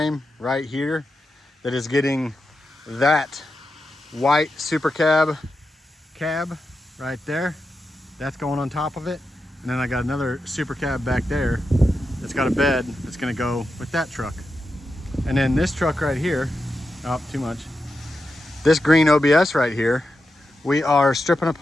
right here that is getting that white super cab right there. That's going on top of it. And then I got another super cab back there that's got a bed that's gonna go with that truck. And then this truck right here, oh, too much. This green OBS right here, we are stripping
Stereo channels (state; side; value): normal; both; correlation 0.89